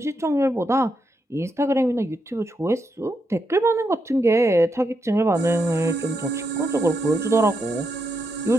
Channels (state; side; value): normal; both; correlation 0.82